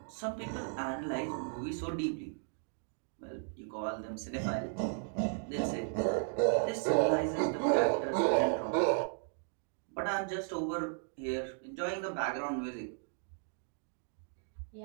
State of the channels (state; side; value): silent; left; 54 dB below the other